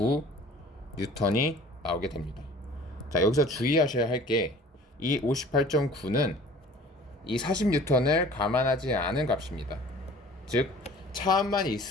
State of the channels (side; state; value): both; normal; correlation 0.48